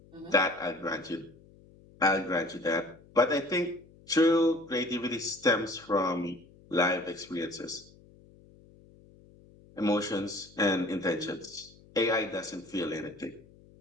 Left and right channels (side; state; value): left; noise; hum, 25 dB below the sound